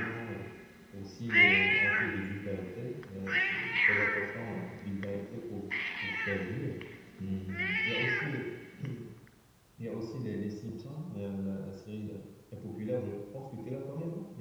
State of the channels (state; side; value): identical; both; correlation 1.00